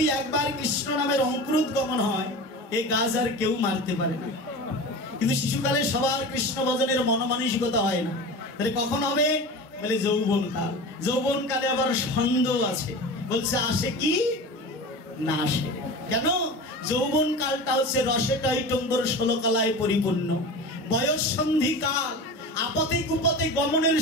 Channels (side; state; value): both; normal; correlation 0.31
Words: একবার কৃষ্ণ নামের অঙ্কুরোদ্গমন হয়, এই গাছ আর কেউ মারতে পারে না। কিন্তু শিশুকালে সবার কৃষ্ণ ভজনের মনোমানসিকতা হয় না। তাহলে কখন হবে? বলে যৌবনকাল। যৌবনকালে আবার সন্দেহ আছে, বলছে আসে কি না আসে। কেন? যৌবনকালটা হচ্ছে রসে টৈটম্বর 16 কলায় পরিপূর্ণ বয়স সন্ধিকাল। আপদে কুপদে গমনের